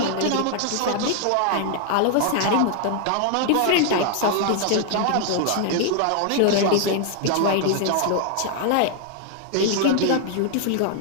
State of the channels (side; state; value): both; different; correlation 0.00